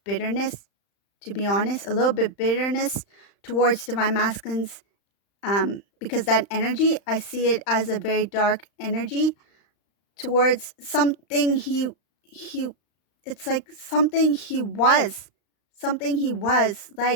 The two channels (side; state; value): right; late; 35 ms